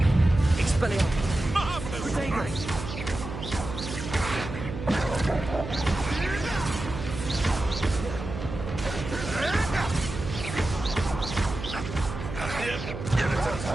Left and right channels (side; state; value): right; noise; hum, 8 dB below the sound